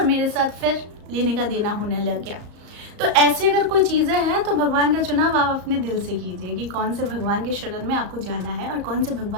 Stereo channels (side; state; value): left; late; 35 ms